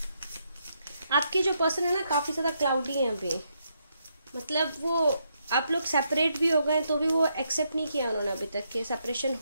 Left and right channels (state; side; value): inverted; both; correlation -0.78